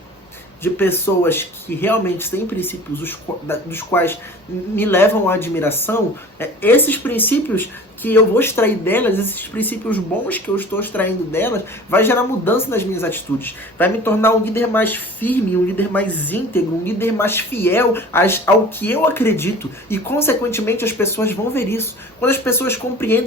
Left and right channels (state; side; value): normal; both; correlation 0.42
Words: de pessoas que realmente têm princípios dos quais me levam à admiração, esses princípios que eu vou extrair delas, esses princípios bons que eu estou extraindo delas, vai gerar mudança nas minhas atitudes. Vai me tornar um líder mais firme, um líder mais íntegro, um líder mais fiel ao que eu acredito. E, consequentemente, as pessoas vão ver isso. Quando as pessoas